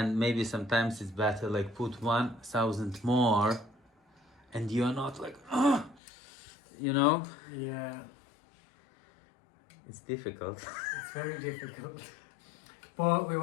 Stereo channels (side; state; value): right; drops out; at 6.0 s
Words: maybe sometimes it's better put 1,000 more and you're not Yeah. It's difficult. It's very difficult. But we